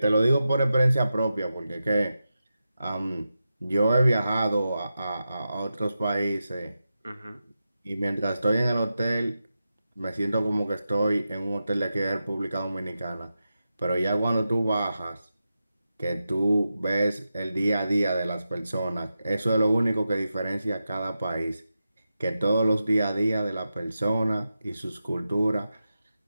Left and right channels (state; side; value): inverted; both; correlation -0.90